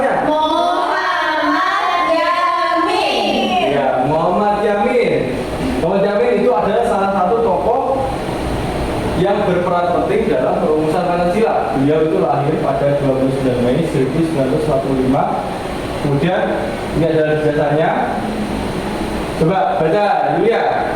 Muhammad Yamin. Ya, Muhammad Yamin. Muhammad Yamin itu adalah salah satu tokoh yang berperan penting dalam perumusan Pancasila. Beliau itu lahir pada 29 Mei 1945. Kemudian ini adalah jasanya. Coba baca, Yulia.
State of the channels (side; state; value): both; identical; correlation 1.00